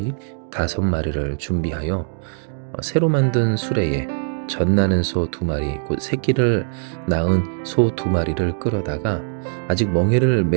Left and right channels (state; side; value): silent; left; digital silence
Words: 5마리를 준비하여 새로 만든 수레에 젖나는 소 2마리 곧 새끼를 낳은 소 2마리를 끌어다가 아직 멍에를